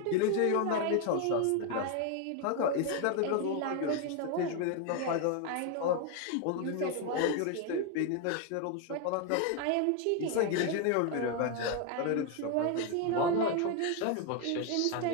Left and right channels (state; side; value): different; both; correlation 0.01